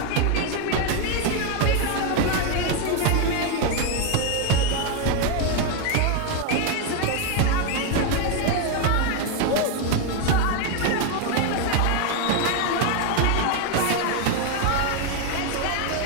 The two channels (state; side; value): different; both; correlation 0.01